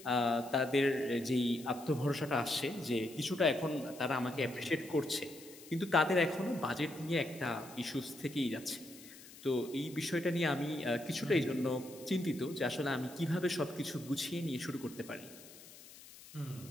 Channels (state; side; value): noise; left; hiss, 18 dB below the sound